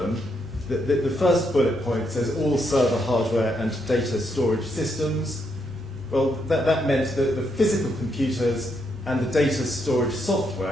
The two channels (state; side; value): normal; both; correlation 0.78